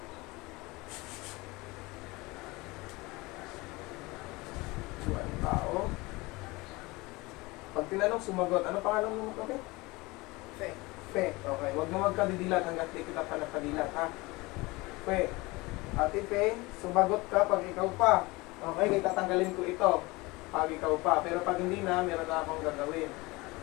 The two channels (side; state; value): right; quieter; 22.9 dB